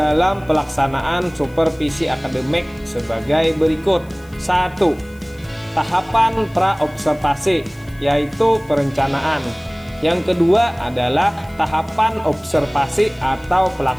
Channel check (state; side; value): noise; left; hiss, 28 dB below the sound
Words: pelaksanaan supervisi akademik sebagai berikut. 1. Tahapan pra-observasi, yaitu perencanaan. Yang kedua adalah tahapan observasi atau